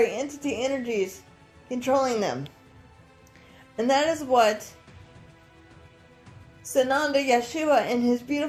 entity energies controlling them. And that is what Sananda Yeshua and his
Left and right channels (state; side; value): identical; both; correlation 1.00